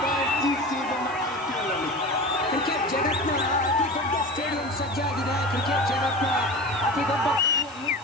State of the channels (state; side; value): noise; right; hiss, 22 dB below the sound